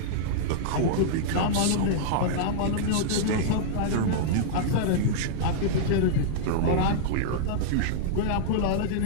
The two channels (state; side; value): different; both; correlation -0.02